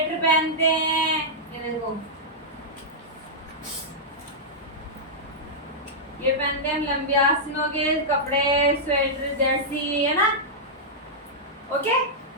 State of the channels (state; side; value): normal; both; correlation -0.09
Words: पहनते हैं। ये देखो, ये पहनते हैं हम लंबी आस्तीनों के कपड़े, स्वेटर, जर्सी, है ना? ओके,